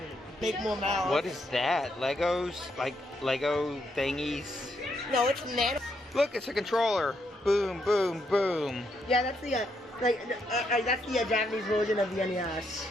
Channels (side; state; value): both; normal; correlation 0.77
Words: Make more mouths. What is that? Legos? Like Lego thingies? No, it's nano. Look, it's a controller. Boom, boom, boom. Yeah, that's the that's the Japanese version of the NES.